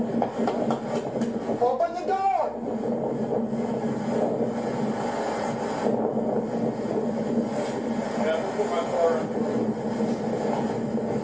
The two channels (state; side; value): noise; left; hum, 25 dB below the sound